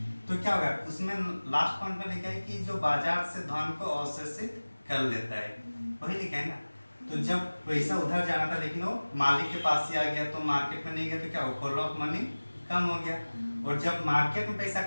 तो क्या होगा? उसमें लास्ट पॉइंट में लिखा है कि जो बाजार से धन को अवशोषित कर लेता है, वही लिखा है ना। तो जब पैसा उधर जाना था लेकिन वो मालिक के पास ही आ गया, तो मार्केट में नहीं गया, तो क्या हो? फ्लो ऑफ मनी कम हो गया। और जब मार्केट में पैसा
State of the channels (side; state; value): both; inverted; correlation -1.00